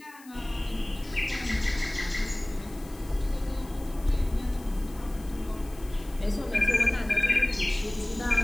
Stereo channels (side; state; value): left; noise; hiss, 23 dB below the sound